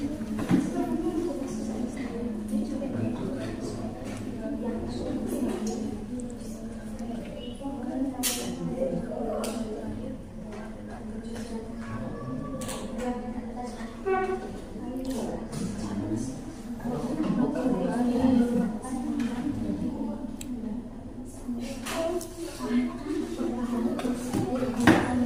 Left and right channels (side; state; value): both; identical; correlation 1.00